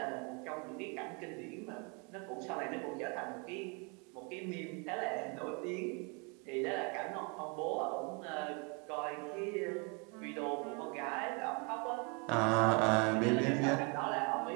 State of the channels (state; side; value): quieter; left; 33.3 dB